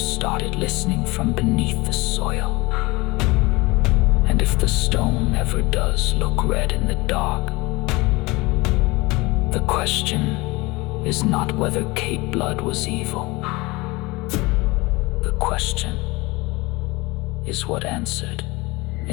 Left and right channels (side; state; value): right; quieter; 23.2 dB